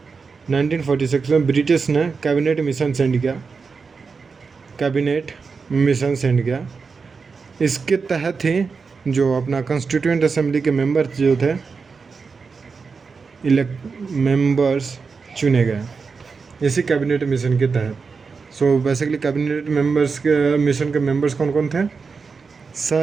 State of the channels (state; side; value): quieter; left; 5.0 dB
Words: 1946 में ब्रिटिश ने कैबिनेट मिशन सेंड किया। इसके तहत ही जो अपना कॉन्स्टिट्यूएंट असेंबली के मेंबर्स जो थे मेंबर्स चुने गए इसी कैबिनेट मिशन के तहत। सो बेसिकली कैबिनेट मेंबर्स के मिशन के मेंबर्स कौन कौन थे?